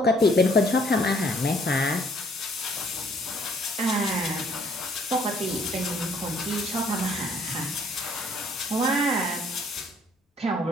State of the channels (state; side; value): normal; both; correlation 0.62